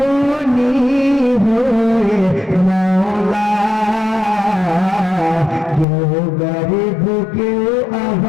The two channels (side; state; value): right; drops out; at 5.9 s